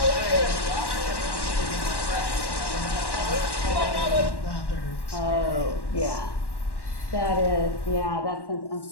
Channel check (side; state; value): right; late; 1.1 ms